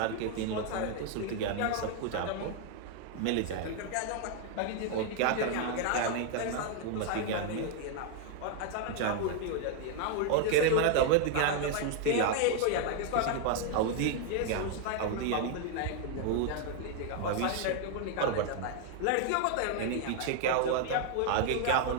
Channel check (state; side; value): different; both; correlation 0.00